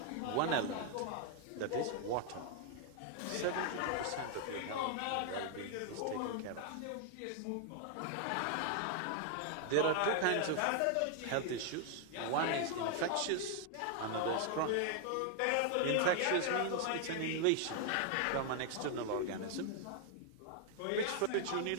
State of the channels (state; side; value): different; both; correlation 0.00